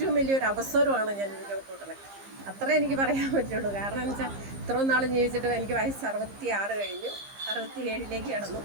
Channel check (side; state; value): left; late; 15 ms